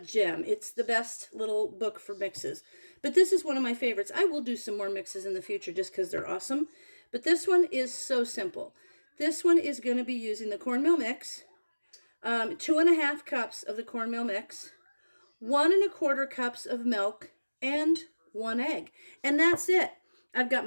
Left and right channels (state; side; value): inverted; both; correlation -1.00